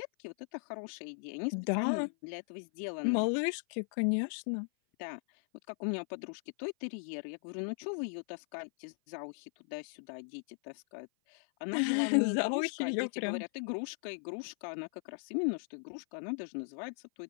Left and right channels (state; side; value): silent; right; 53 dB below the other